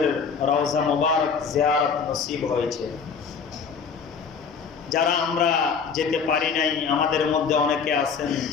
রওজা মুবারক জিয়ারত নসিব হয়েছে। যারা আমরা যেতে পারি নাই, আমাদের মধ্যে অনেকে আছেন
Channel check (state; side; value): quieter; right; 5.9 dB